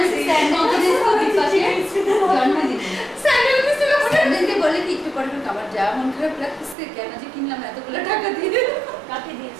স্যান্ডেল দিতে পাশে স্যান্ডেল দিছিল স্যান্ডেলকে বলে কি একটু পরে আমার যা মন খারাপ লাগছে কেন যে কিনলাম এতগুলো টাকা দিয়ে কাকে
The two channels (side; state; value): left; drops out; at 6.8 s